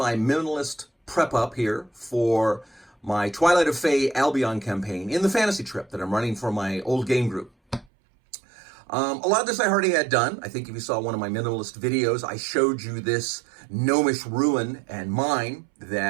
minimalist prep up here for my Twilight of Fey Albion campaign in the fantasy trip that I'm running for my old game group. A lot of this I already had done. I think if you saw one of my minimalist videos, I showed you this gnomish ruin and mine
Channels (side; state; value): left; drops out; at 7.9 s